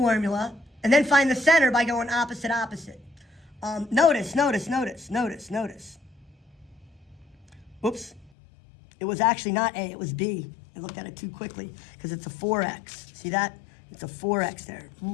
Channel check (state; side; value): drops out; right; at 8.3 s